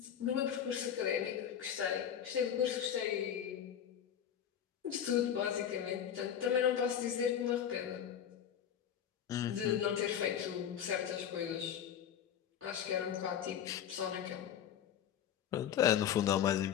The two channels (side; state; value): right; quieter; 9.3 dB